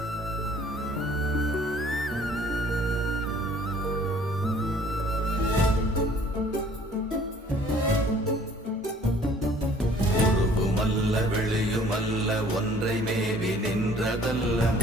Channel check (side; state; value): both; normal; correlation 0.55